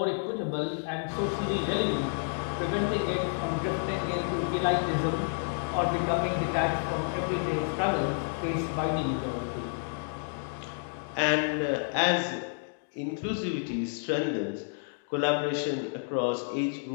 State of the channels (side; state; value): right; silent; digital silence